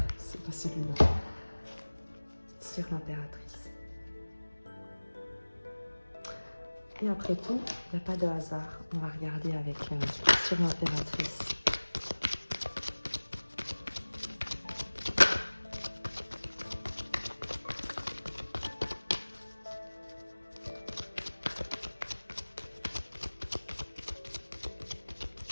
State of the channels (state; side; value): inverted; both; correlation -1.00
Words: c'est pas celui-là. Sur l'impératrice. Et après tout, il n'y a pas de hasard. On va regarder avec sur l'impératrice.